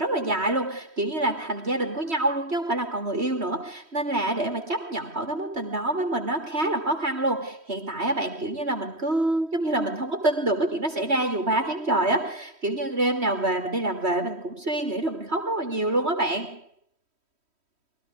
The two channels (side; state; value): left; late; 3.1 ms